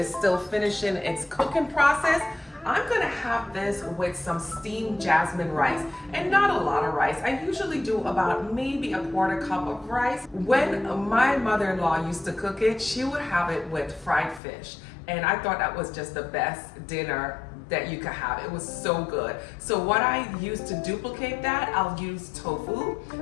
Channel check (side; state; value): right; drops out; at 14.4 s